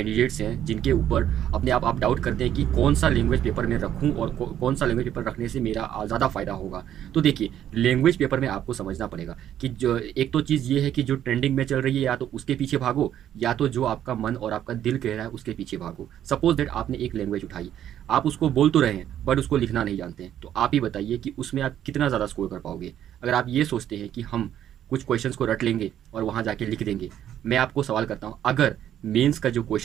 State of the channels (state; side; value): quieter; left; 10.8 dB